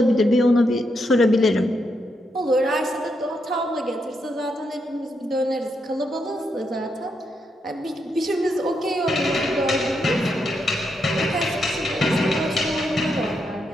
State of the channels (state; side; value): normal; both; correlation 0.81